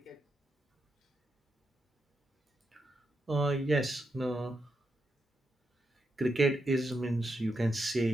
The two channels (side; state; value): both; normal; correlation 0.84